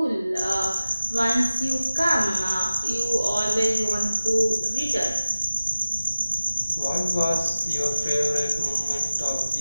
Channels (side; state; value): both; inverted; correlation -0.96